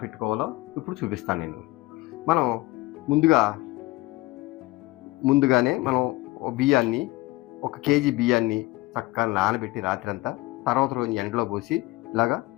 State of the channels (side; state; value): right; quieter; 20.6 dB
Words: పెట్టుకోవాలో ఇప్పుడు చూపిస్తాను నేను. మనం ముందుగానే మనం బియ్యాన్ని 1 కేజీ బియ్యాన్ని చక్కగా నానబెట్టి రాత్రంతా, తర్వాత రోజు ఎండలో పోసి ఇలాగా